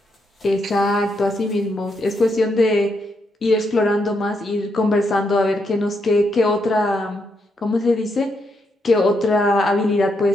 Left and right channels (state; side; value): normal; both; correlation 0.79